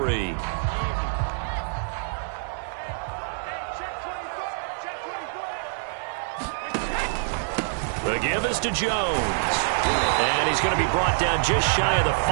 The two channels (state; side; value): silent; left; 57 dB below the other